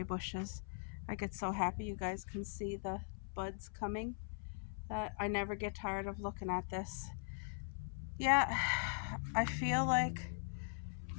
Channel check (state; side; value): silent; right; 50 dB below the other